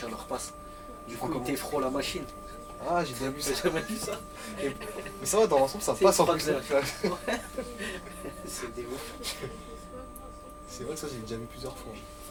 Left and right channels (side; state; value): both; identical; correlation 1.00